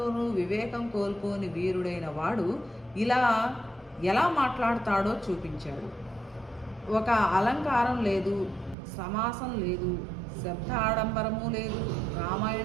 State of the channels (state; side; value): drops out; left; at 8.8 s